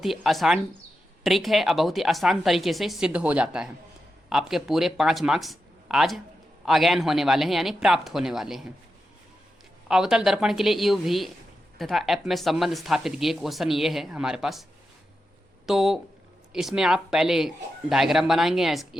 ही आसान ट्रिक है और बहुत ही आसान तरीके से सिद्ध हो जाता है। आपके पूरे 5 मार्क्स आज अगेन होने वाले हैं, यानी प्राप्त होने वाले हैं। अवतल दर्पण के लिए यू भी तथा एफ में संबंध स्थापित किए, क्वेश्चन ये है हमारे पास। तो इसमें आप पहले डायग्राम बनाएंगे,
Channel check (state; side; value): normal; both; correlation 0.88